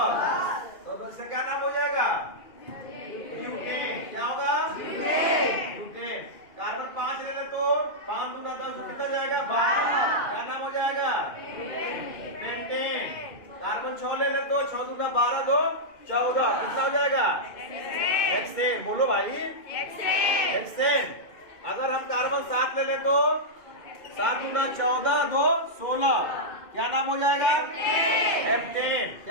तो इसका क्या नाम हो जाएगा? ब्यूटेन। क्या होगा? ब्यूटेन। कार्बन 5 ले लें तो 5 दूना 10 कितना जाएगा? 12। क्या नाम हो जाएगा? पेंटेन। कार्बन 6 ले लें तो 6 दूना 12 2 14 कितना हो जाएगा? हेक्सेन। बोलो भाई, हेक्सेन। अगर हम कार्बन 7 ले लें तो 7 दूना 14 2 16 क्या नाम हो जाएगा? हेप्टेन।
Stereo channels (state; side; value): late; right; 2.1 ms